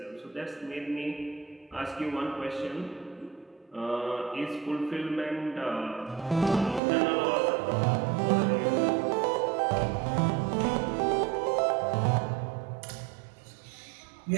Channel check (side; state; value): left; drops out; at 6.8 s